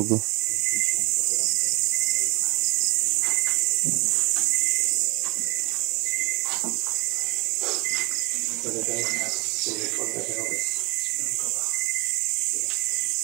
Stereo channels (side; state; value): left; quieter; 26.7 dB